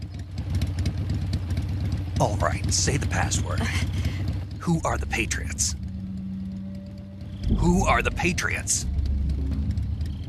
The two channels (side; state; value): both; identical; correlation 1.00